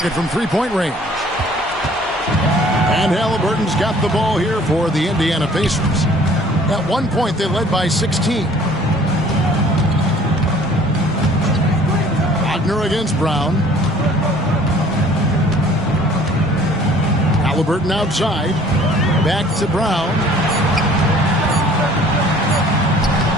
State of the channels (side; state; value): both; normal; correlation 0.54